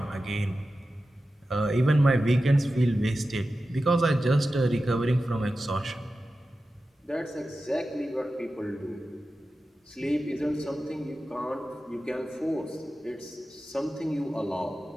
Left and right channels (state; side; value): normal; both; correlation 0.93